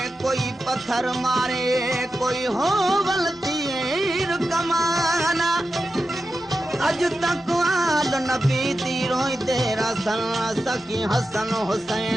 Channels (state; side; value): normal; both; correlation 0.91